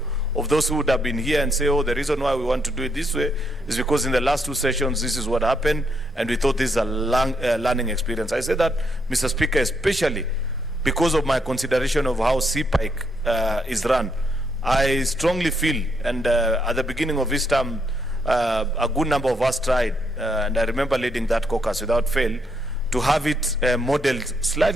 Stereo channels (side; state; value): both; normal; correlation 0.76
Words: of those who would have been here and say, oh, the reason why we want to do it this way is because in the last two sessions this is what happened and we thought this is a learning experience. I say that, Mr. Speaker, especially because of my consideration of how CPIC is run. I strongly feel, and at the beginning of this term, a good number of us tried, and I remember leading that caucus without fail, to have it modeled